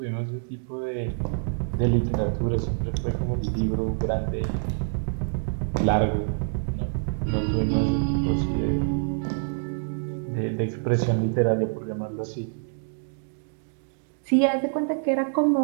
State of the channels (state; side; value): silent; left; digital silence